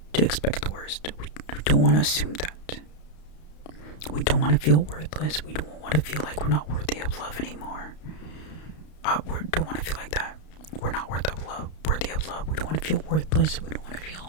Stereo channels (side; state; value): right; late; 32 ms